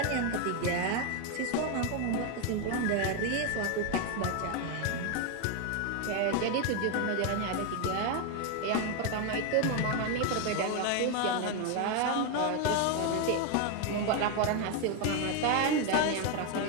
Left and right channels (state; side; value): different; both; correlation 0.01